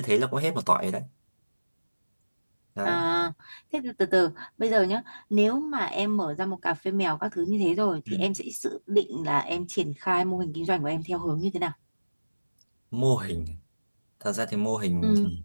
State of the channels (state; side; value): inverted; both; correlation -1.00